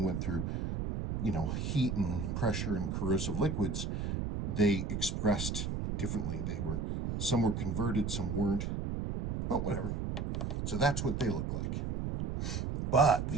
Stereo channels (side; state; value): right; noise; rumble, 2 dB below the sound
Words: went through, heat and pressure and corrosive liquids. They expressed differently. Some were converted, some weren't. But whatever. So that's what they look like. But